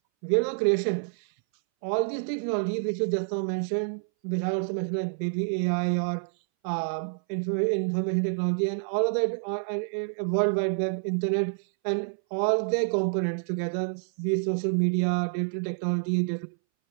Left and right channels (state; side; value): silent; left; 60 dB below the other